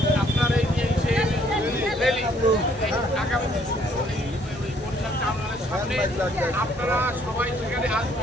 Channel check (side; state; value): both; normal; correlation 0.64